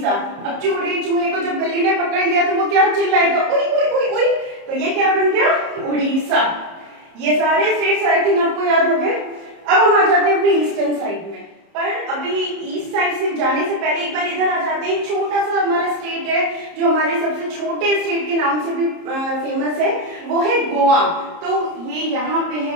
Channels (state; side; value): late; left; 30 ms